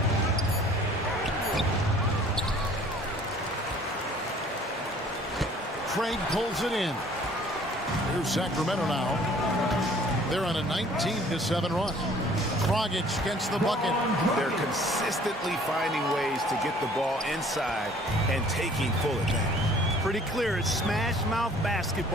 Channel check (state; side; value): normal; both; correlation 0.54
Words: Craig pulls it in. Here's Sacramento now. They're on a 19-7 run. Dragic gets the bucket. They're consistently finding ways to get the ball inside and taking full advantage. Pretty clear. It's smash mouth